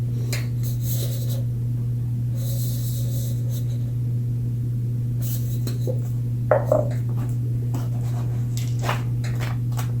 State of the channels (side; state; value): both; identical; correlation 1.00